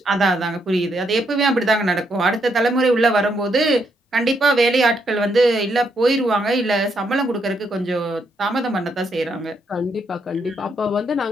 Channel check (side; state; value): both; normal; correlation 0.76